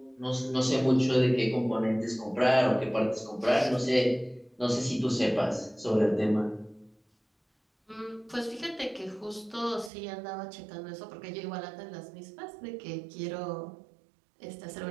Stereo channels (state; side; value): drops out; left; at 9.9 s